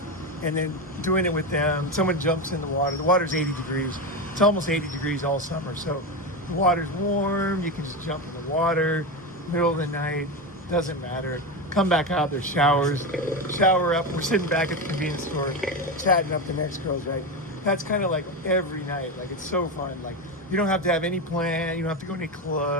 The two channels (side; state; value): both; normal; correlation 0.16